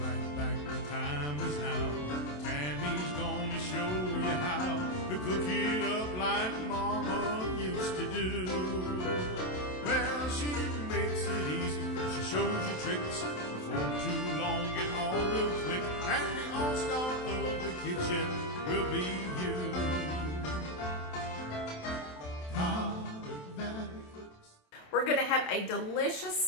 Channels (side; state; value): right; late; 27 ms